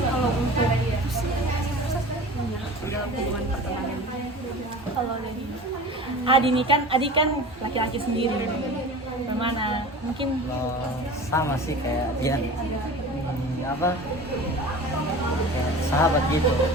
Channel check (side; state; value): both; normal; correlation 0.37